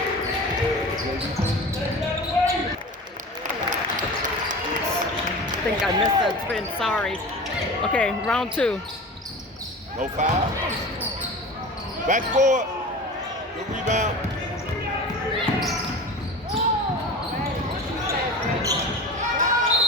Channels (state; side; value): normal; both; correlation 0.34